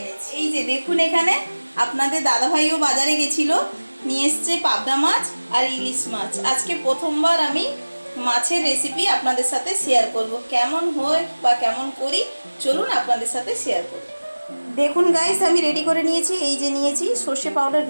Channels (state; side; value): inverted; both; correlation -1.00